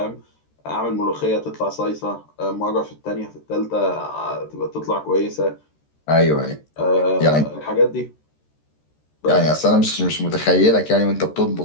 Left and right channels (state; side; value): late; right; 13 ms